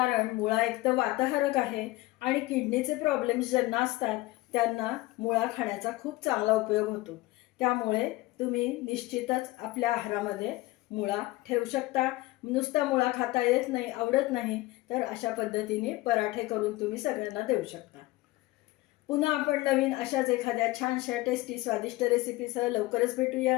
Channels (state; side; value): quieter; right; 19.4 dB